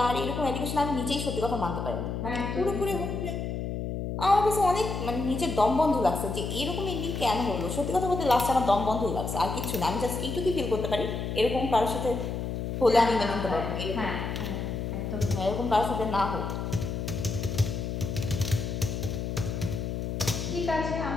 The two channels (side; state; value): left; noise; hum, 3 dB below the sound